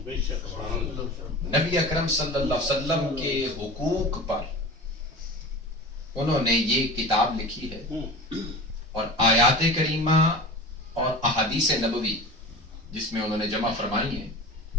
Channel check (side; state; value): both; normal; correlation 0.34